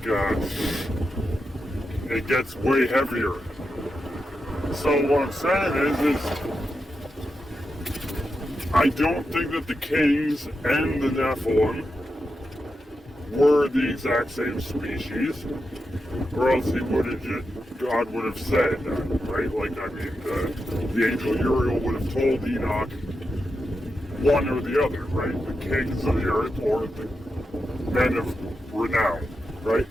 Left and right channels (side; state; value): both; normal; correlation 0.88